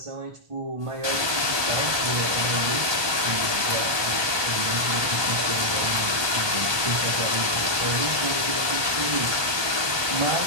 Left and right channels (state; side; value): late; left; 1.2 ms